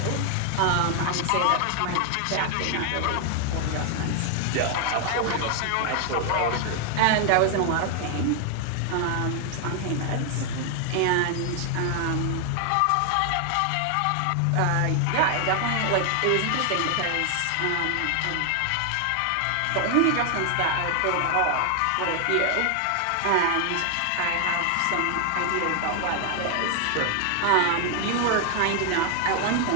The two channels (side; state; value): both; different; correlation 0.00